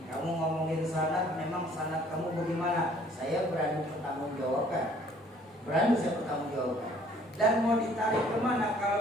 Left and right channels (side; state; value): both; normal; correlation 0.58